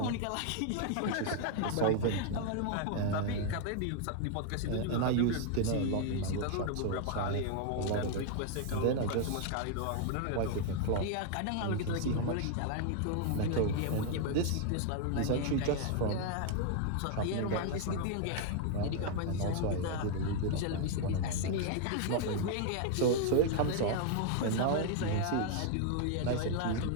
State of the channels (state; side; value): different; both; correlation 0.00